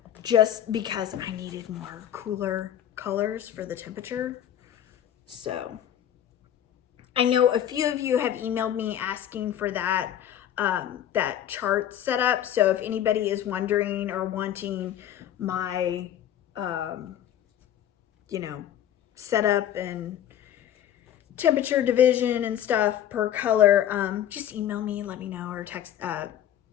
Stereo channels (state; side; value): quieter; right; 10.7 dB